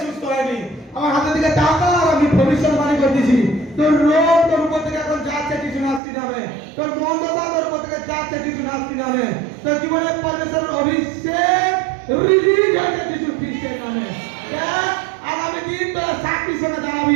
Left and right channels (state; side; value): drops out; left; at 6.0 s